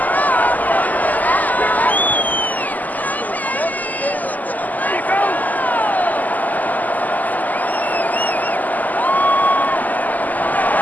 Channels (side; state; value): right; late; 0.081 ms